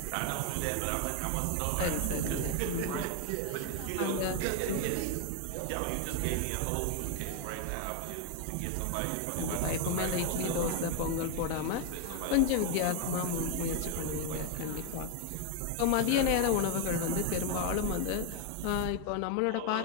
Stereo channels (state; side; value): different; both; correlation 0.00